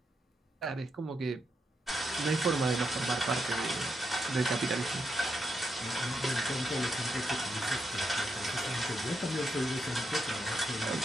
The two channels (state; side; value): normal; both; correlation 0.82